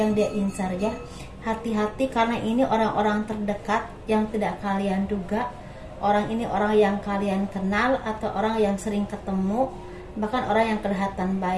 dia incar ya. Hati-hati karena ini orang-orang terdekat yang tidak kalian duga. Orang ini orang yang kalian kenal atau orang yang sering ketemu, bahkan orang yang kelihatan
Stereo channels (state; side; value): identical; both; correlation 1.00